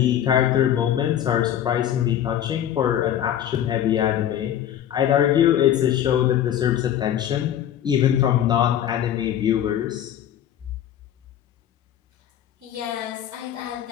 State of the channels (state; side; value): quieter; right; 10.7 dB